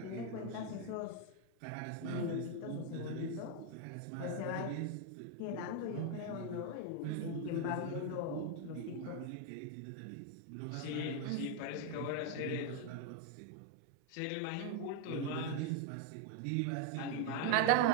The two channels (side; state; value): both; different; correlation 0.01